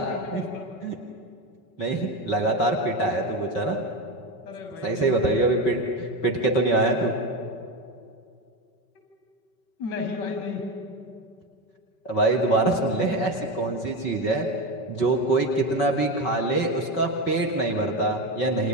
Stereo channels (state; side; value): late; right; 4.9 ms